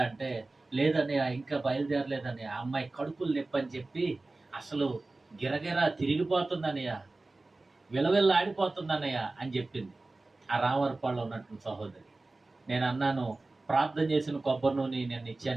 అంటే, లేదన్నయ్య ఇంకా బయలుదేరలేదని, ఆ అమ్మాయి కడుపులు నొప్పి అని చెప్పి అసలు గిరగిరా తిరిగిపోతుందన్నయ్య, విలవిల్లాడిపోతుందన్నయ్య అని చెప్పింది ఆ రామవరపాడులో ఉన్నటువంటి సహోదరి. నేను అన్నాను, ప్రార్థన చేసిన కొబ్బరి నూనె నేను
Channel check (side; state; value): left; quieter; 3.2 dB